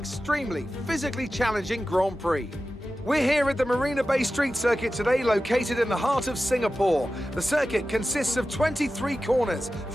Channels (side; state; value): both; normal; correlation 0.93